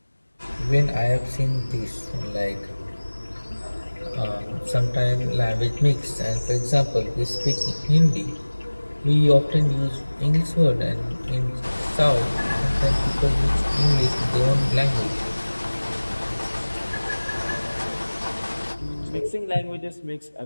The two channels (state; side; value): inverted; both; correlation -1.00